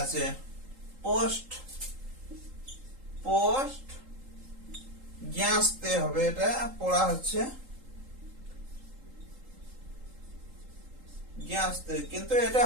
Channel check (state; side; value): late; left; 3.8 ms